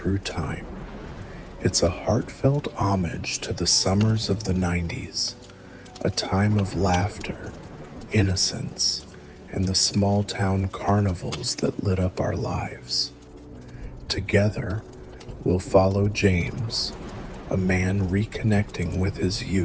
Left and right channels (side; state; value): both; identical; correlation 1.00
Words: time. It's a heartfelt homage to the summers of the 90s, a time of laughter, innocence, and the small-town carnivals that lit up our lives. Together, we'll follow James, a man reconnecting with his